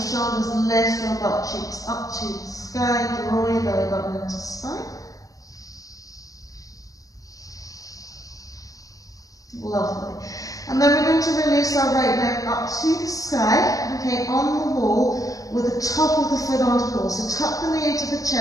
lift your butt cheeks up to the sky, draw your belly button into spine. Lovely. And then we're going to release our right leg up to the sky, okay, on the wall, with the top of the foot onto the wall. So tuck the knee into the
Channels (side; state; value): right; late; 0.17 ms